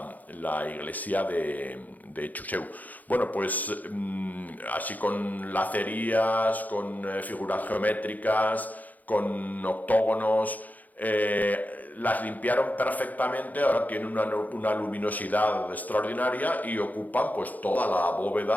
iglesia de Juseu. Bueno, pues así con lacerías, con figuras geométricas, con octógonos, las limpiaron perfectamente, ahora tienen una luminosidad extraordinaria y ocupan pues toda la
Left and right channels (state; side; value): late; right; 0.080 ms